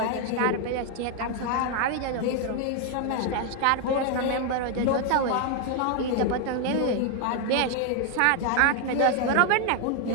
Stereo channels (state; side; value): different; both; correlation 0.00